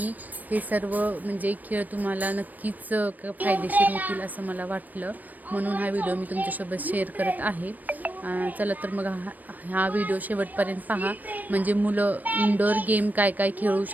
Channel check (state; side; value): late; left; 0.084 ms